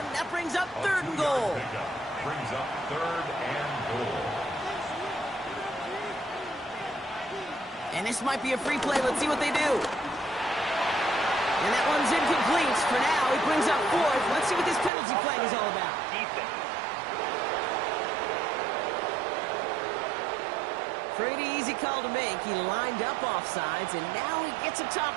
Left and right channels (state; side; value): drops out; left; at 14.9 s